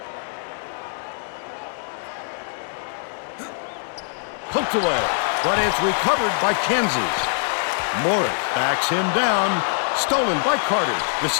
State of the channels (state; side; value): silent; right; 63 dB below the other